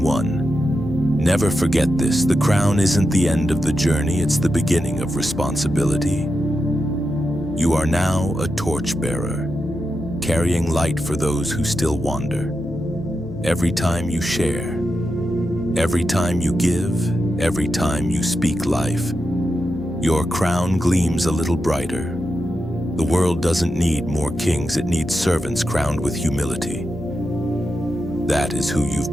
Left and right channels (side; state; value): left; noise; hum, 15 dB below the sound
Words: one, never forget this: the crown isn't the end of the journey, it's the beginning of responsibility. You are now a torchbearer, carrying light for those who still wander. Every time you share, every time you give, every time you speak life, your crown gleams a little brighter. The world doesn't need more kings, it needs servants crowned with humility. That is who